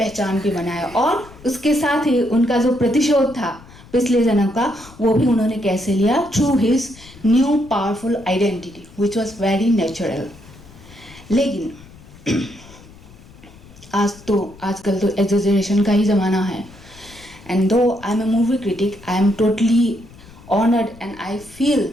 भी बनाया, और उसके साथ ही उनका जो प्रतिशोध था पिछले जन्म का, वो भी उन्होंने कैसे लिया? Through his new powerful identity which was very natural. लेकिन आजकल तो एग्जेजरेशन का ही ज़माना है, and though I am a movie critic, I am totally honoured and I feel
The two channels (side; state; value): left; noise; rumble, 22 dB below the sound